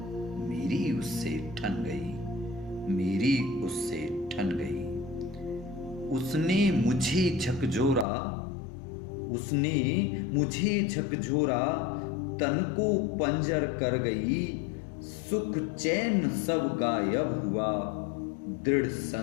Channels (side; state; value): right; drops out; at 8.1 s